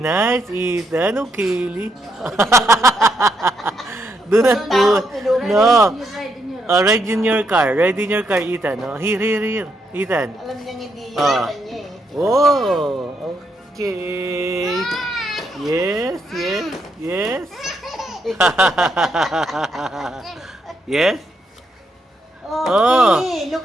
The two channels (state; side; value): normal; both; correlation 0.78